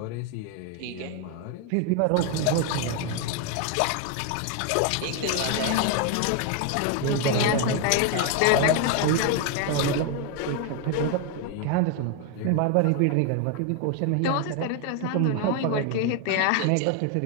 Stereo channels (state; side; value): different; both; correlation 0.01